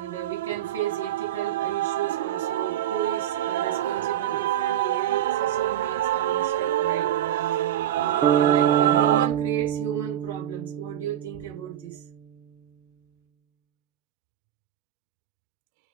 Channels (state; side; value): quieter; left; 11.3 dB